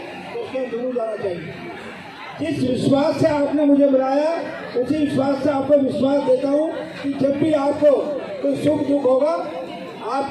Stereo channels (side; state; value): both; identical; correlation 1.00